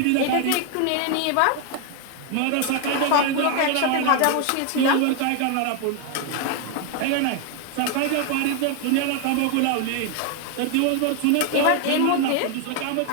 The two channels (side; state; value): both; different; correlation 0.01